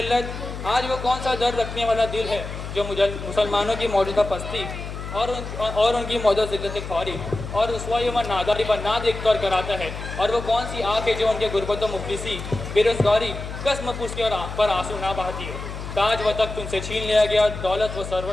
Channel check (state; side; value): noise; left; hum, 8 dB below the sound